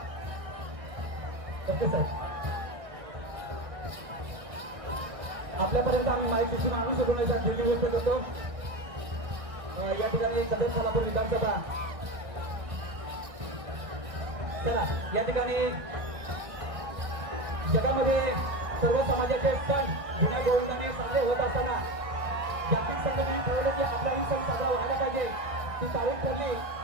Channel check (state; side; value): late; left; 1.4 ms